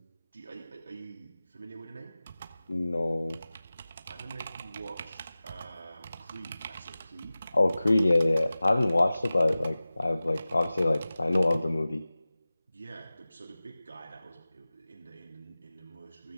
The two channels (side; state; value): both; inverted; correlation -0.97